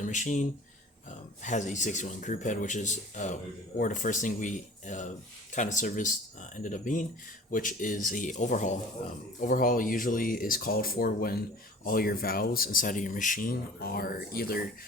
machine. Has a 61 group head, which is or the first thing we kind of serviced ended up being, which is a overhaul. Overhaul usually is called for when all your valves inside of your machine are either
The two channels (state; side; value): normal; both; correlation 0.45